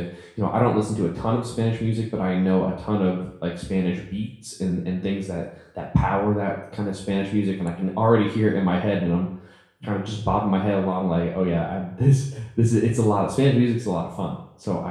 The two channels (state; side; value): identical; both; correlation 1.00